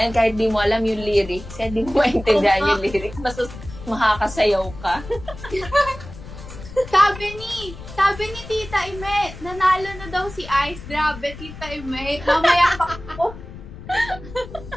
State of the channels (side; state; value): left; noise; rumble, 14 dB below the sound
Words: yan, kahit di mo alam yung lyrics, kahit di mo maintindihan yung lyrics, basta makakasayaw ka. Sabi ni Tita Ime, nanalo na daw si Ice. Grabe, Tita Ime. Mamaya pa ako.